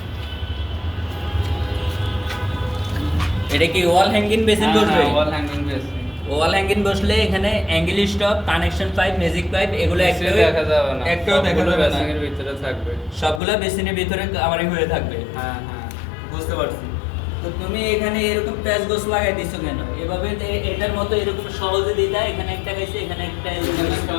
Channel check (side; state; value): right; drops out; at 13.4 s